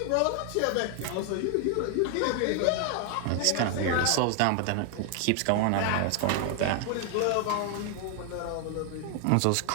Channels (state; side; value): different; both; correlation 0.00